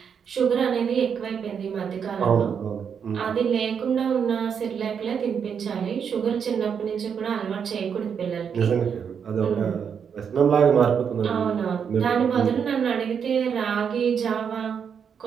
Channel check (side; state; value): left; quieter; 7.2 dB